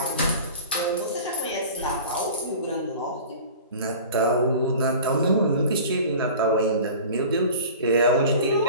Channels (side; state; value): both; inverted; correlation -0.39